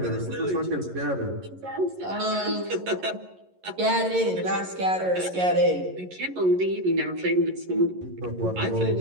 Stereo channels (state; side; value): late; left; 11 ms